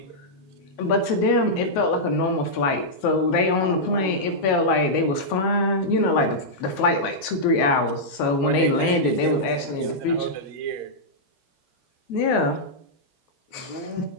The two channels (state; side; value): late; right; 11 ms